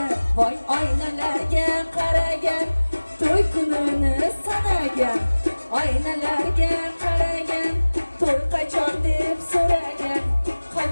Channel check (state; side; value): inverted; both; correlation -1.00